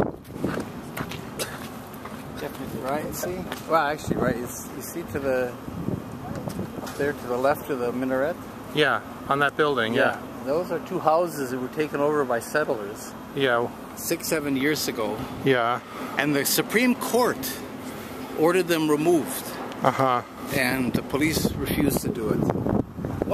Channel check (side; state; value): both; identical; correlation 1.00